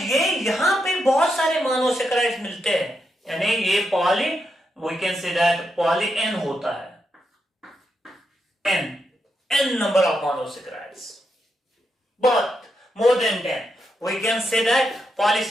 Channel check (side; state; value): both; normal; correlation 0.84